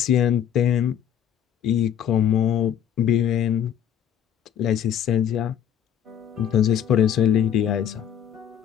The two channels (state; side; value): quieter; right; 9.5 dB